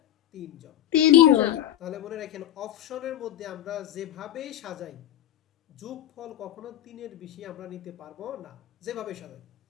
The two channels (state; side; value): quieter; right; 12.2 dB